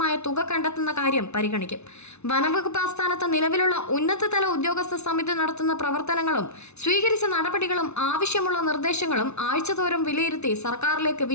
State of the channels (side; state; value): right; late; 0.81 ms